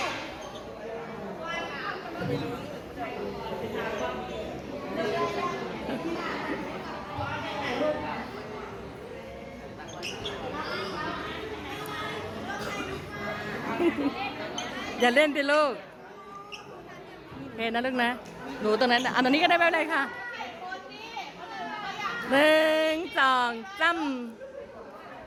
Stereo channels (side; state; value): both; identical; correlation 1.00